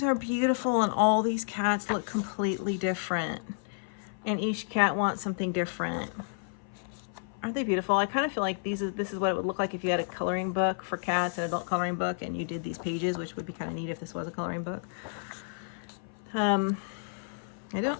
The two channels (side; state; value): right; silent; 56 dB below the other